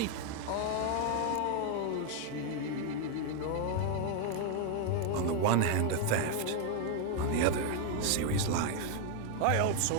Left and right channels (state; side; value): different; both; correlation 0.01